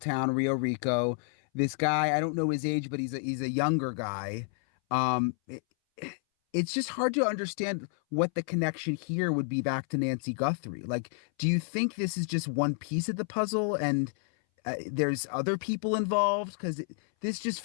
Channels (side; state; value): right; silent; 58 dB below the other